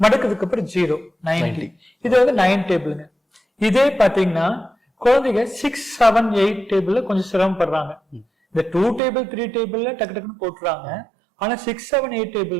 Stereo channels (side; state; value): left; drops out; at 9.0 s